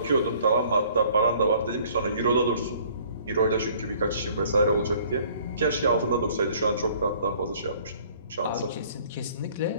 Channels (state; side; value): inverted; both; correlation -0.56